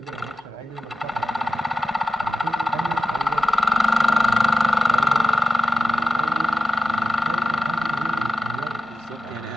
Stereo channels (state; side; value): normal; both; correlation 0.92